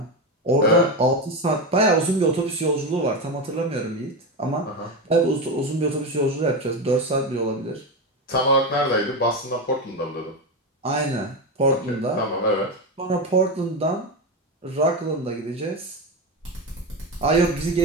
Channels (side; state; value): both; normal; correlation 0.15